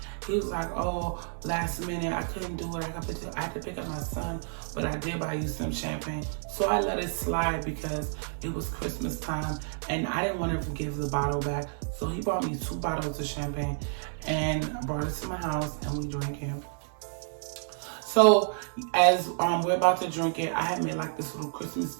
He was like, oh, last minute, I couldn't do it. I had to pick up my son, but I did buy you some champagne. So I let it slide because it was Christmas time and I didn't want to give the bottle back. So he bought me 2 bottles of champagne and brought it to my house and we drank it. So as we're about to drink it, I had made like this little Christmas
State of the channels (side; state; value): left; silent; digital silence